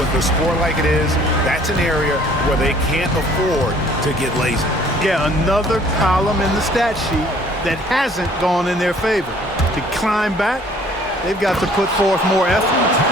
with the score like it is, that's an area where they can't afford to get lazy. Yeah, another column in the stat sheet that hasn't gone in their favor. To climb back, they've got to put forth more effort.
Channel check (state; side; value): normal; both; correlation 0.57